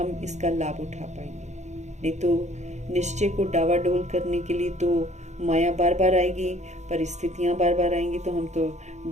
इसका लाभ उठा पाएंगे। नहीं तो निश्चय को डावाडोल करने के लिए तो माया बार बार आएगी, परिस्थितियां बार बार आएंगी, तो हम तो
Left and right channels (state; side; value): late; left; 0.33 ms